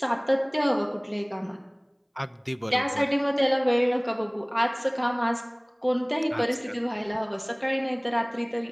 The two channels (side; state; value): both; identical; correlation 1.00